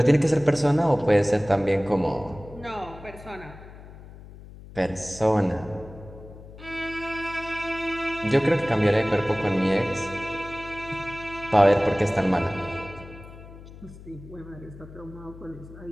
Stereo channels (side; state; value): left; noise; hum, 17 dB below the sound